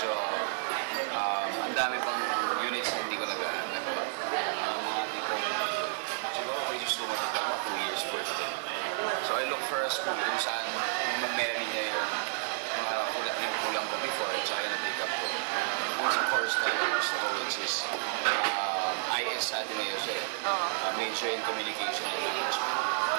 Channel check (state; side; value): silent; left; digital silence